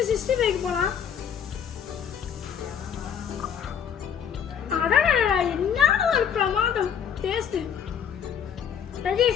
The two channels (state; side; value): quieter; right; 8.0 dB